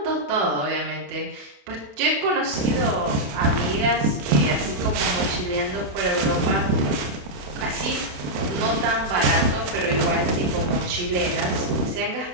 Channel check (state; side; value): late; left; 28 ms